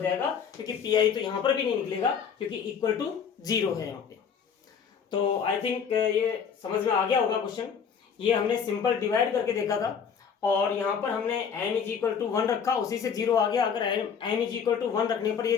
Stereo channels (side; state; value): right; quieter; 6.9 dB